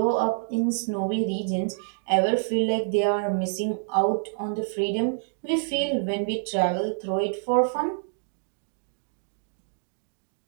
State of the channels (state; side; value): silent; left; digital silence